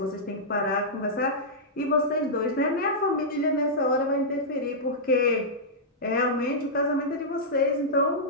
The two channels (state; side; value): normal; both; correlation -0.11